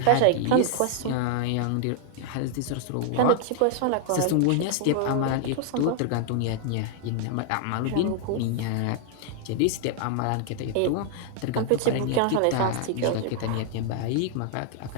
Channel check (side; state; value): both; different; correlation 0.00